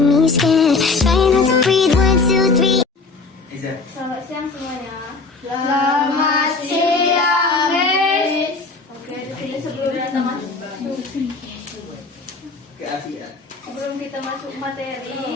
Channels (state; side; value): quieter; right; 4.0 dB